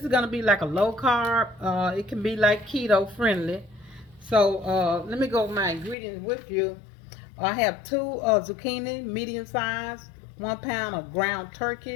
is going to be like a low carb. It can be like keto friendly. So let me go over my ingredients with you. I have two zucchini, medium size, 1 pound of ground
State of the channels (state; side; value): drops out; right; at 6.0 s